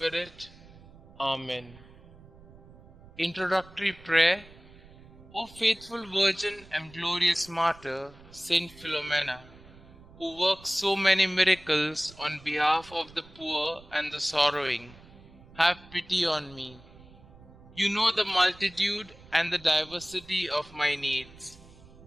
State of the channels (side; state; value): right; noise; rumble, 22 dB below the sound